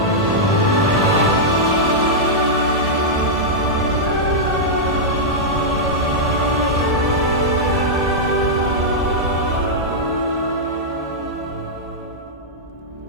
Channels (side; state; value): both; normal; correlation -0.07